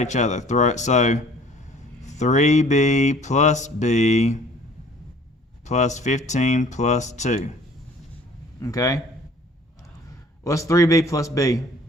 each other. So 3b plus b plus 15 plus 2. Okay? What's 3b plus b?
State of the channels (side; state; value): both; normal; correlation 0.53